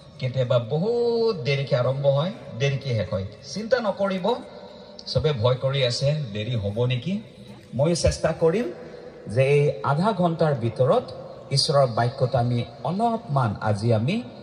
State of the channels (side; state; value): both; identical; correlation 1.00